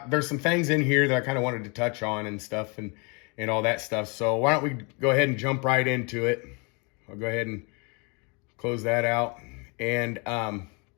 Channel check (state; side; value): quieter; right; 31.9 dB